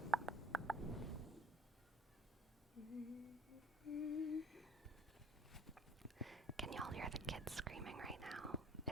Can y'all hear the kids screaming right now?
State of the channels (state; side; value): normal; both; correlation 0.51